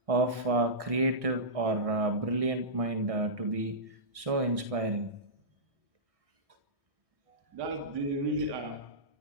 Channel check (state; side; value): late; left; 1.6 ms